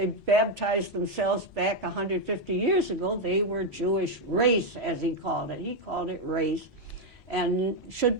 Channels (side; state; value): both; normal; correlation 0.04